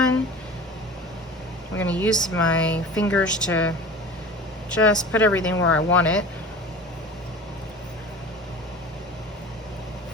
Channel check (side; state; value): both; normal; correlation 0.38